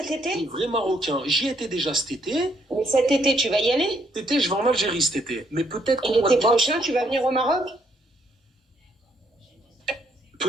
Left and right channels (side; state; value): both; normal; correlation 0.71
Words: Les été? vrais Marocains. J'y étais déjà cet été. Mais cet été, tu vas y aller? Cet été, je vais en Algérie cet été. Mais Et l'été prochain, tu vas venir au Maroc?